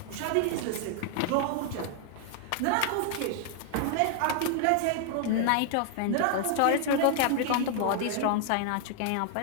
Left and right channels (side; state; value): both; different; correlation 0.00